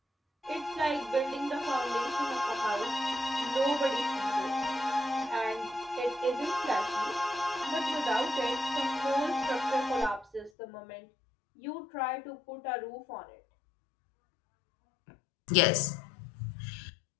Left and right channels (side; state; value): right; drops out; at 10.5 s